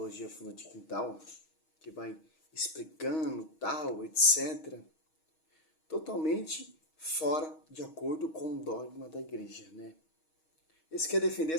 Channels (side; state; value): right; late; 6.3 ms